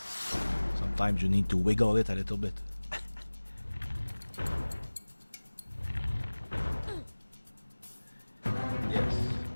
Sometimes you need to wiggle it a little bit. Yes,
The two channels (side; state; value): both; inverted; correlation -1.00